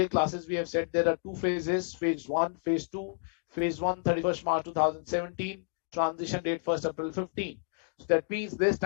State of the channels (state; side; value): silent; right; digital silence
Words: classes we have said there are two phases: phase 1, phase 2. Phase 1 31st March 2017, transition date 1st April 15. So that means this